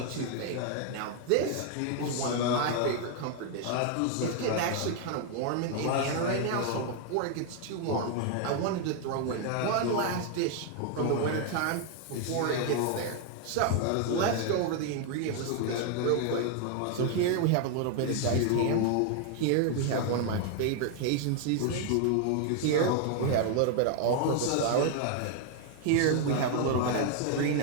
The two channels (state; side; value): different; both; correlation 0.00